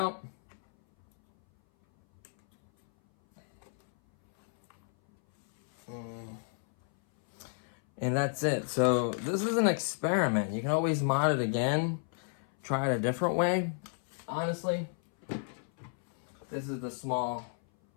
And that's it. So this is an experiment. You can always mod it again. Try it a different way. Honestly, this is the small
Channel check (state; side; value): silent; right; 56 dB below the other